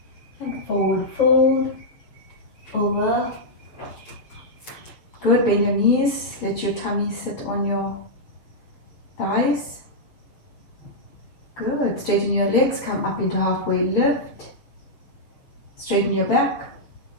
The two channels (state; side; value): late; right; 6.8 ms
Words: And forward fold. Over. Good, bend your knees. Let your tummy sit on your thighs. Good, straighten your legs. Come up into halfway lift. Straighten your back.